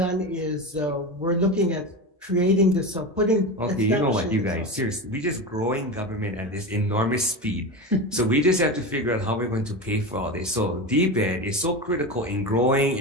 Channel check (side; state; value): both; normal; correlation 0.23